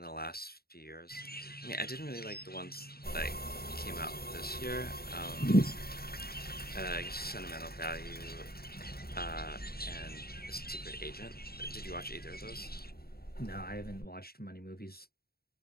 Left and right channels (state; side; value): late; right; 0.45 ms